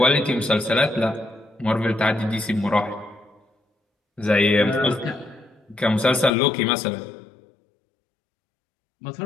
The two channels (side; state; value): right; drops out; at 6.3 s